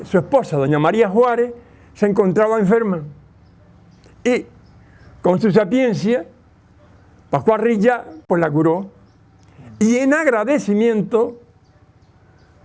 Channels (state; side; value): identical; both; correlation 1.00